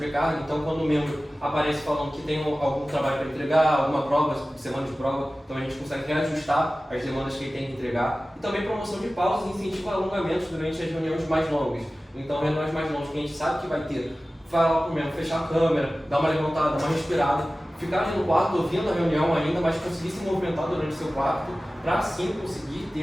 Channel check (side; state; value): both; normal; correlation 0.96